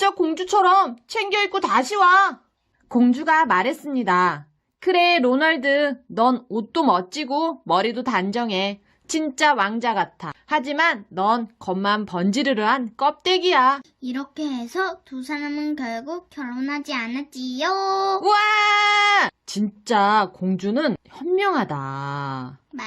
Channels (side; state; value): both; identical; correlation 1.00